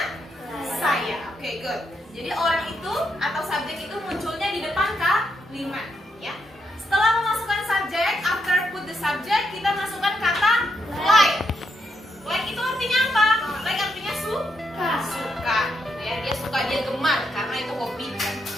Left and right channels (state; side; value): normal; both; correlation 0.80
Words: saya. Oke, good. Jadi orang itu atau subjek itu munculnya di depan kalimat, ya. Setelah memasukkan subjek, after put the subject, kita masukkan kata like. Like itu artinya apa? Like artinya suka. Ya, dia suka, dia gemar karena itu hobi.